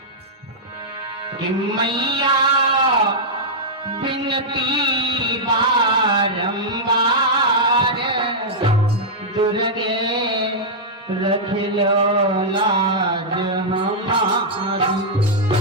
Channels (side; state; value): both; normal; correlation -0.08